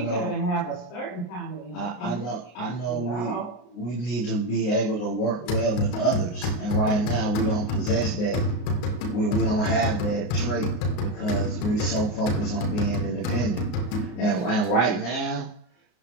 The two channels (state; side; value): late; right; 34 ms